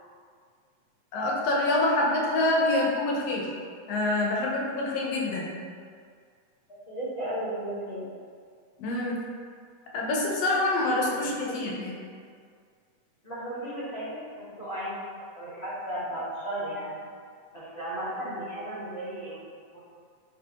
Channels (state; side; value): late; right; 8.0 ms